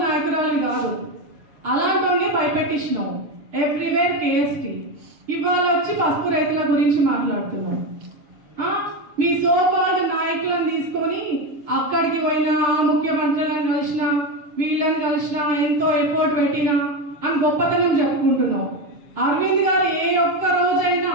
నాయకురాలు కాదు, అలాంటి భయపెట్టించినావు. Everywhere KST. ఇవాళ వచ్చి పసుపు రైతుల గురించి మాట్లాడుతున్నావు. మీ సోకాల్డ్ నాయకులను తీసుకొని అక్కడికి పోయినా, ముఖ్యమంత్రులను కలిసినా, వీళ్ళని కలిసినా, ఎంతో ఎఫర్ట్ పెట్టినా అని గొప్పతనం చెప్పుకుంటున్నావు. అరవింద్ గారు ఏ ఒక్క రోజైనా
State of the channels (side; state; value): left; late; 6.7 ms